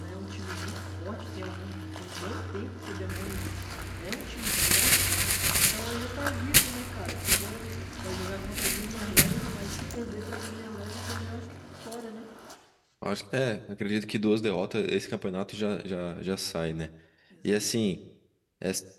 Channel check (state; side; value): identical; both; correlation 1.00